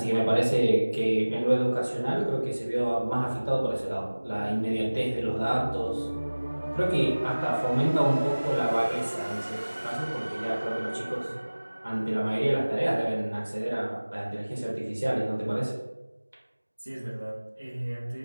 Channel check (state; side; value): inverted; both; correlation -1.00